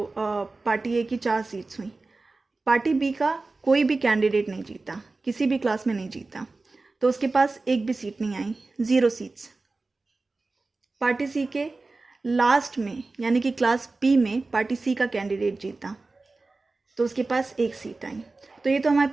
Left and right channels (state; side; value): quieter; left; 3.5 dB